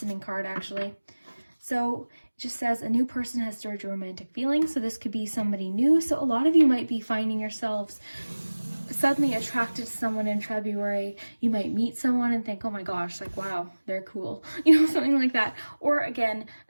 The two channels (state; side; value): inverted; both; correlation -1.00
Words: card actually. So it just says a new person has stirred your romantic feelings. So this could be somebody new. So a lot of you might be finding yourselves suddenly attracted to someone in February. You might meet someone and think, oh my gosh, like, wow, they're cool. You know, something like that. Or again,